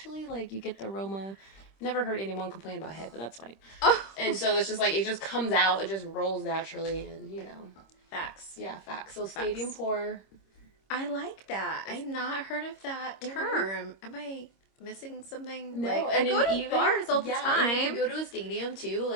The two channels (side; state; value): right; late; 26 ms